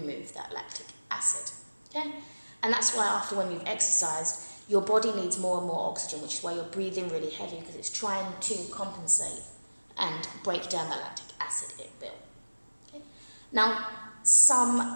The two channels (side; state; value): both; inverted; correlation -1.00